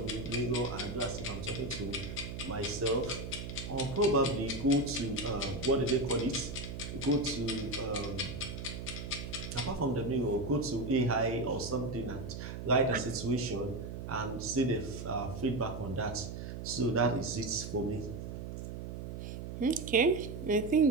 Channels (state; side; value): noise; right; hum, 7 dB below the sound